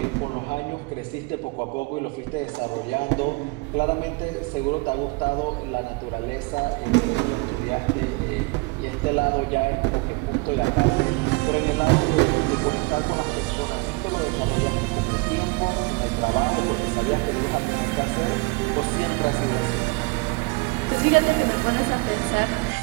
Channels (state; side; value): quieter; left; 26.9 dB